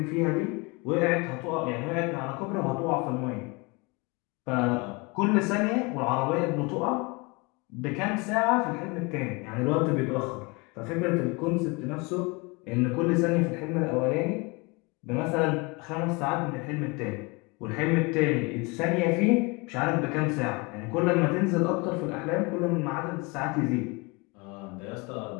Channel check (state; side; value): quieter; right; 27.2 dB